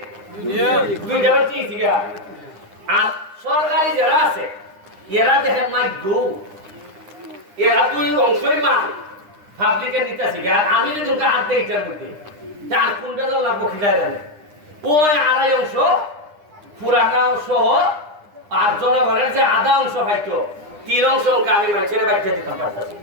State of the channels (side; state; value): left; late; 9.9 ms